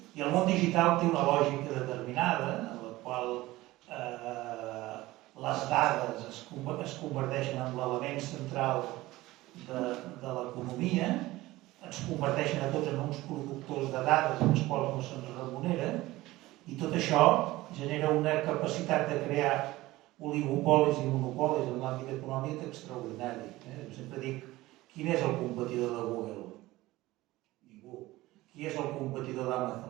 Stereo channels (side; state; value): left; quieter; 18.2 dB